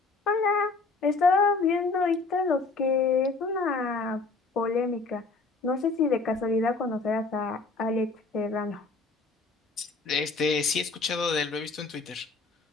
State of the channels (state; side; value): quieter; right; 3.9 dB